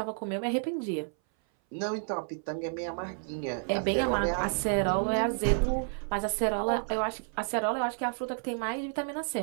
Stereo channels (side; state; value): left; silent; 57 dB below the other